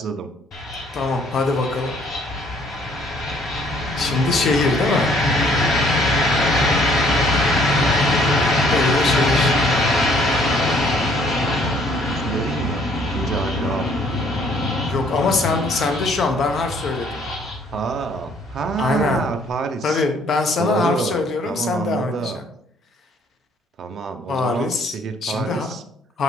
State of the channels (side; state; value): both; normal; correlation 0.62